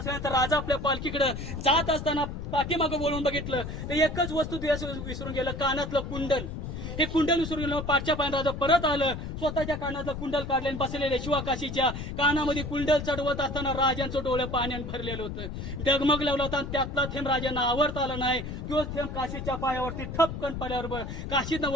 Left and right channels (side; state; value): left; noise; rumble, 7 dB below the sound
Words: राजा आपल्या पालखीकडे जात असताना पाठीमागं बोलून बघितलं तर एकच वस्तू विसरून गेलं कानातलं कुंडल. हे कुंडल विसरून गेलं. पाठच्या पायानं राजा परत आलं स्वतःच्या कानातलं कुंडल काढले आणि बसलेले शिवाकाशीच्या कानामध्ये कुंडल चढवत असताना राजांचं डोळं पाण्याने भरलेलं होतं. डगमग लावला होता. त्यातला थेंब राजांना आवडता आला नाही. तोच थेंब काशीच्या पायावरती ठपकन पडल्यावर काशीतनं